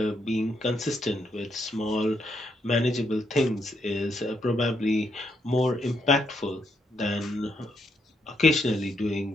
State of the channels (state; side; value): normal; both; correlation 0.77